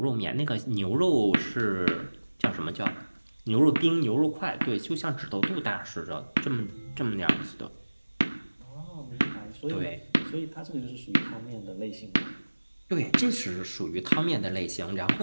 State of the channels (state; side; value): inverted; both; correlation -1.00